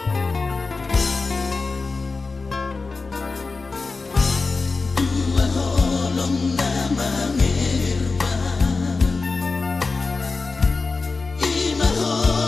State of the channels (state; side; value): quieter; right; 4.0 dB